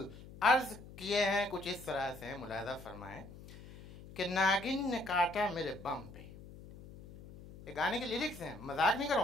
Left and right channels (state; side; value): noise; left; hum, 16 dB below the sound